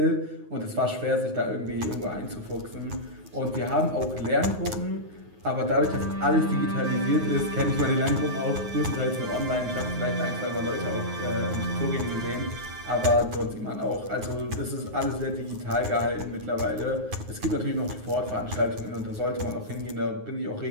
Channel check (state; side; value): late; left; 9.5 ms